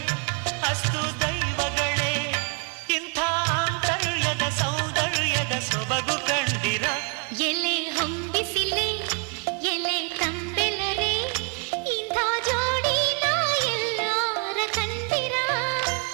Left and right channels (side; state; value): left; quieter; 34.6 dB